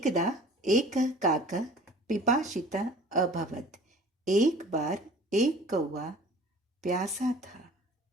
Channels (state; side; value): normal; both; correlation 0.46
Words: एक काकः पिपासितः अभवत्। एक बार एक कौवा प्यासा था।